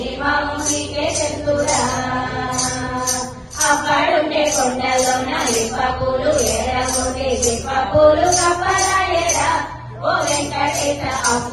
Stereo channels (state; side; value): identical; both; correlation 1.00